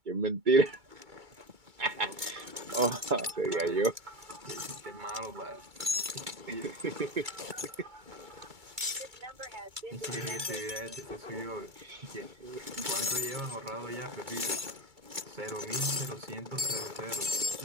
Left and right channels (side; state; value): left; late; 2.3 ms